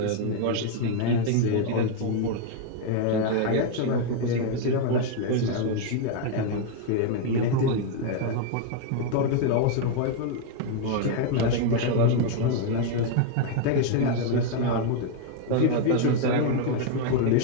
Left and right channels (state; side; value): different; both; correlation 0.00